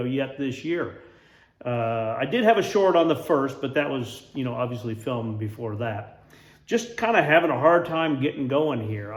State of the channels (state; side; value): identical; both; correlation 1.00